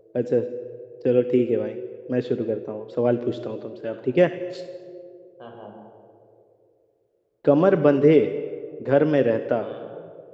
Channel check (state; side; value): identical; both; correlation 1.00